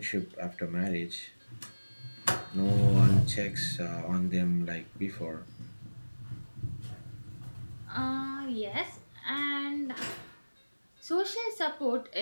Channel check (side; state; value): both; inverted; correlation -1.00